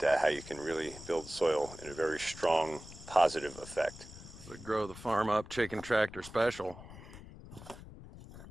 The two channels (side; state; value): left; noise; rumble, 15 dB below the sound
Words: how you can really build soil in a very strong, positive effect. The Grow the Farm Up Chicken Tractor Special.